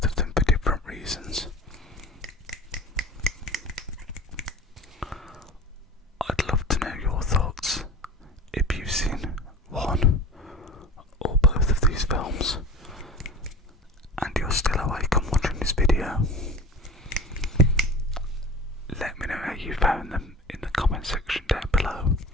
of them for different reasons. I'd love to know your thoughts if you've seen one or both of these films and you're still awake and watching this video. Let me know how you found them in the comment section down below.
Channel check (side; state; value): both; normal; correlation 0.36